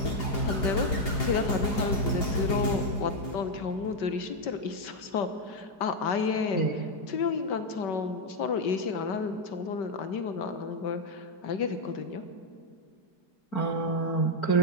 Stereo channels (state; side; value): late; right; 4.9 ms